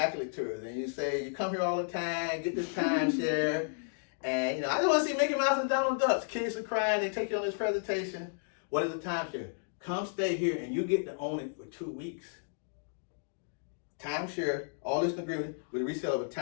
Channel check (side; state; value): right; silent; digital silence